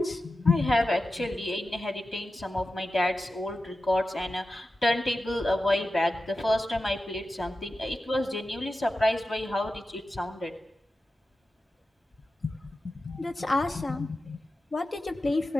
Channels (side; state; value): both; normal; correlation 0.93